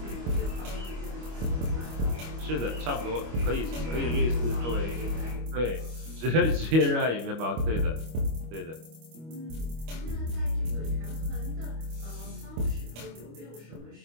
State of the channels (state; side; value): late; left; 25 ms